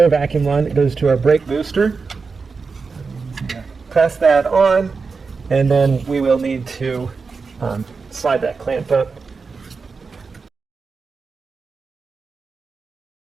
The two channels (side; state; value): left; quieter; 4.7 dB